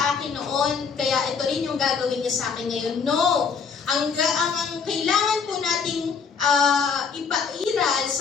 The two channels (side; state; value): right; quieter; 5.9 dB